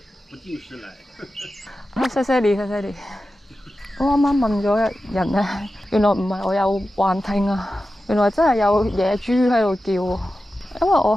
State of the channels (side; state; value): both; normal; correlation 0.93